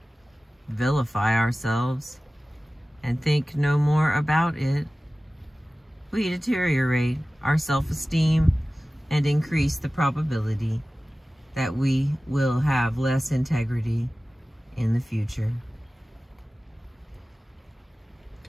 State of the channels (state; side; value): normal; both; correlation 0.96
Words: vilify ourselves, and think no more about it, we deteriorate our self-esteem and increase the probability that we will have less integrity in the future.